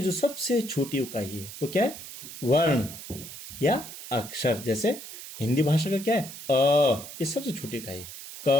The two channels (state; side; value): noise; right; hiss, 12 dB below the sound